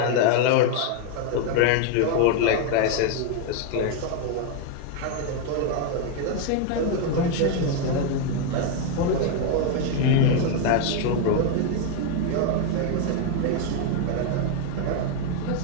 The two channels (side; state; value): both; different; correlation 0.01